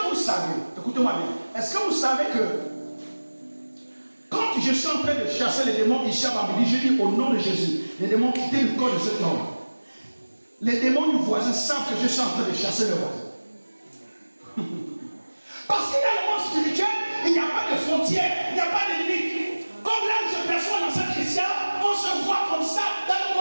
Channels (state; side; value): inverted; both; correlation -1.00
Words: vous savez, écoutez-moi bien, est-ce que vous savez que quand je suis en train de chasser les démons ici à Bambili, je dis au nom de Jésus, les démons quittez le corps de cet homme. Les démons du voisin savent que je suis en train de chasser le voisin. Parce qu'il y a le monde spirituel, il n'y a pas de frontières, il n'y a pas de limites. Comme là où je perçois dans cette chrétien, on se voit comme ça dans le